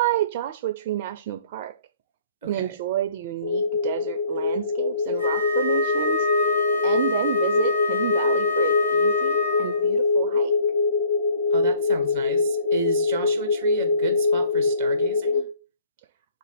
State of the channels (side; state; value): both; inverted; correlation -0.57